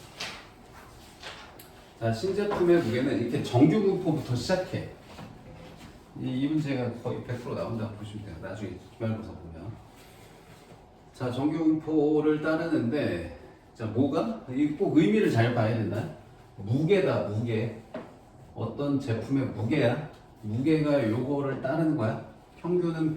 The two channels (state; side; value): identical; both; correlation 1.00